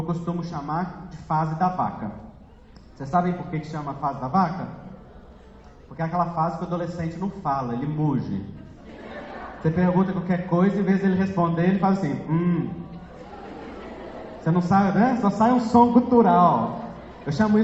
costumo chamar de fase da vaca. Vocês sabem por que chama fase da vaca? Porque é aquela fase que o adolescente não fala, ele muge. Você pergunta qualquer coisa, em vez de ele responder, ele faz assim, Você não sabe, né? Só sai um som gutural. Eu chamo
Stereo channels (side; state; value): both; identical; correlation 1.00